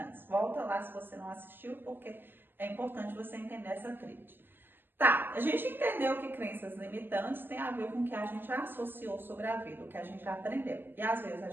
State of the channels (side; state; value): left; late; 0.097 ms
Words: Volta lá se você não assistiu, porque é importante você entender essa tríade. Tá, a gente entendeu que crenças limitantes tem a ver com o que a gente associou sobre a vida, o que a gente aprendeu. E às vezes a